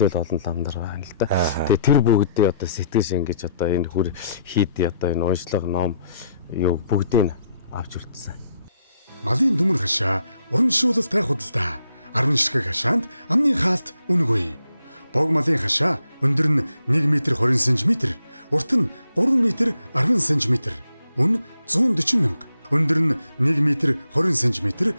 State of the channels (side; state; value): both; inverted; correlation -0.74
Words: олон лам нар байна л да. Тэгээ тэр бүгдээ одоо сэтгэл шингэж одоо энэ хүр хийдий одоо энэ уншлага ном юу бүгдийг авч үлдсэн. Малын дүмэр хашаа уран шуулалтай худалдаа 10 ширхэг хашаанд амны хаалт үнэгүй. Бог малын хашаа өндөр нь 1 м 20 см, урт нь 3 м 10 см, үн 140 мянга. Өндөр нь 1 м 20 см,